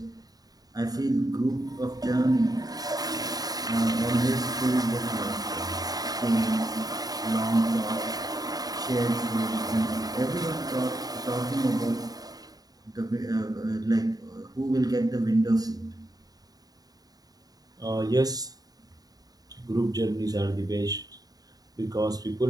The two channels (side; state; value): left; late; 0.18 ms